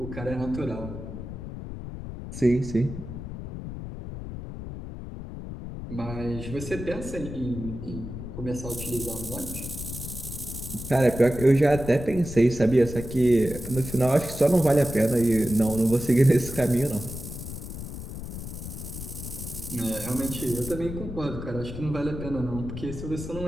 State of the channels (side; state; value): left; noise; rumble, 9 dB below the sound